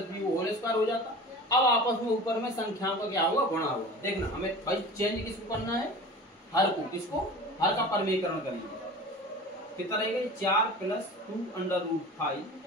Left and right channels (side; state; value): both; normal; correlation 0.37